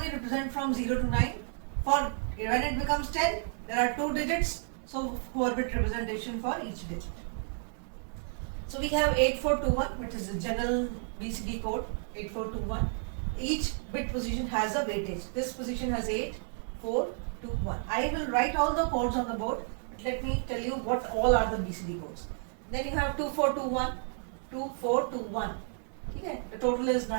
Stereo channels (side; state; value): left; silent; 57 dB below the other